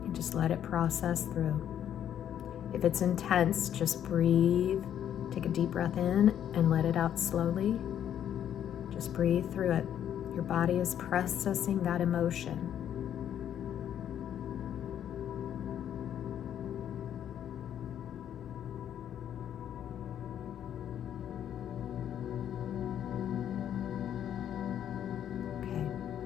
And just let it process through. If it's intense, just breathe. Take a deep breath in and let it out slowly. Just breathe through it. Your body is processing that emotion. Okay,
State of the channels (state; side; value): quieter; right; 10.0 dB